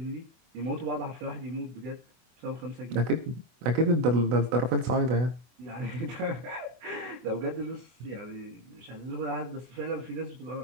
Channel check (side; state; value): left; late; 24 ms